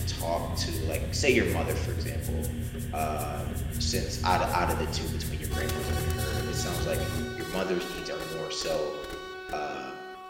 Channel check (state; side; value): identical; both; correlation 1.00